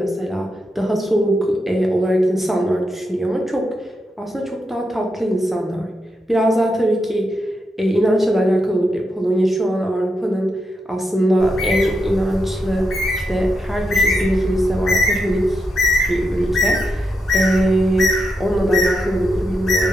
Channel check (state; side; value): normal; both; correlation 0.84